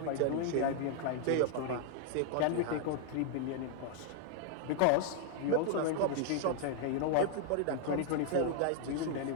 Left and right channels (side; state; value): both; different; correlation 0.00